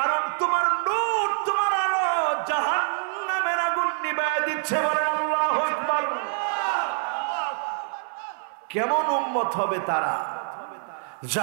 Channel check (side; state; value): left; silent; digital silence